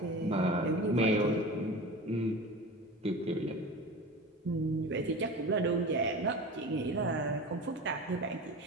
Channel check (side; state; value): both; normal; correlation 0.32